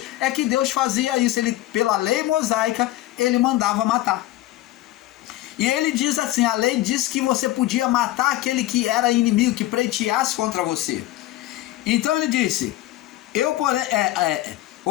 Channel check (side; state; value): right; quieter; 15.9 dB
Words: é que Deus fazia isso. Ele, pela lei mosaica, ele mandava matar. E ele diz assim, a lei diz que você podia matar aquele que era inimigo, que pleiteasse contra você. Então ele disse,